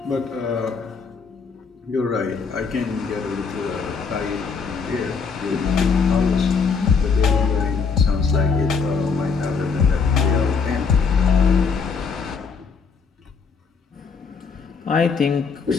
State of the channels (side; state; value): right; quieter; 5.3 dB